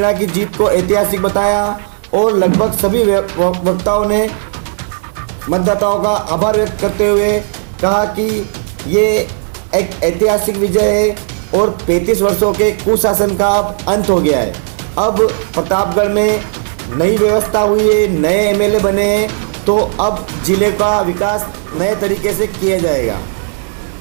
की जीत को ऐतिहासिक बताया और लगभग सभी वक्ताओं ने मतदाताओं का आभार व्यक्त करते हुए कहा कि ये एक ऐतिहासिक विजय है और 35 वर्षों के कुशासन का अब अंत हो गया है। अब प्रतापगढ़ में नई व्यवस्था हुई है, नए एमएलए बने हैं, तो अब जिले का विकास नए तरीके से किया जाएगा।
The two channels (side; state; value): left; silent; digital silence